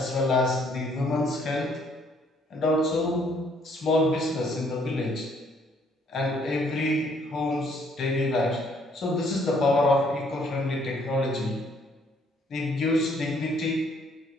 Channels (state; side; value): normal; both; correlation 0.65